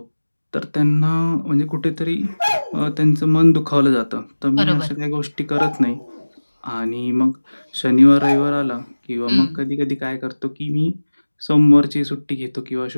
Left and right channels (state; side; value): inverted; both; correlation -1.00